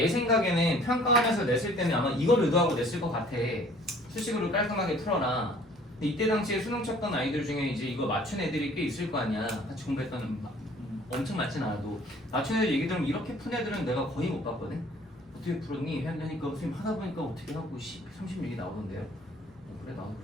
생각에는 평가하면서 냈을 때는 아마 이걸 의도하고 냈을 것 같아. 수식으로 깔끔하게 풀어라. 근데 이때 당시에 수능 쳤던 아이들 중에 이제 이거 맞춘 애들이 꽤 있을 거 아니야. 같이 공부했던 엄청 많진 않아도 맞춘 애들 얘기 들으면 이렇게 푼 애들은 내가 거의 못 봤거든. 어떻게 풀었니? 하니까 선생님 하다 보니까 어떻게 하고 36이 나오던데요. 그래 나도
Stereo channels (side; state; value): both; normal; correlation 0.54